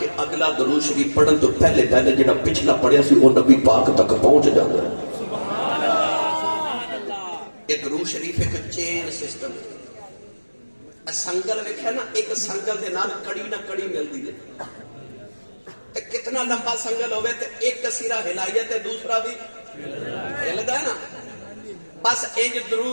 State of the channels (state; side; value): inverted; both; correlation -1.00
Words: اگلا درود شریف پڑھن تو پہلے جڑا پچھلا پڑھیا سی وہ نبی پاک تک پہنچ جاتا ہے یہ درود شریف ایک چین سسٹم ہے سنگل ویکھیا نا ایک سنگل دے نال کڑی نہ کڑی ملدی ہے کتنا لمبا سنگل ہوئے تو ایک سیرہ ہلائیے تو دوسرا بھی ہلدا ہے نا بس انج